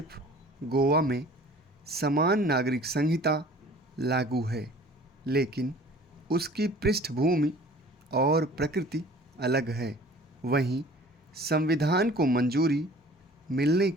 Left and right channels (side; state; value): both; normal; correlation 0.48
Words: गोवा में समान नागरिक संहिता लागू है, लेकिन उसकी पृष्ठभूमि और प्रकृति अलग है। वहीं संविधान को मंजूरी मिलने